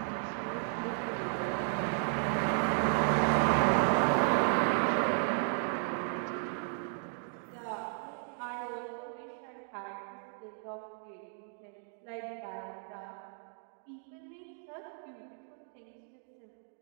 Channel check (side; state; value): left; silent; 55 dB below the other